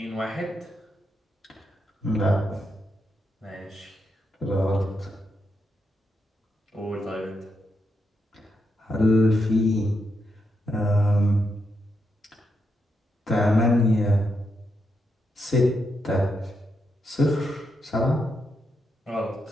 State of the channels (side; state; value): both; normal; correlation 0.83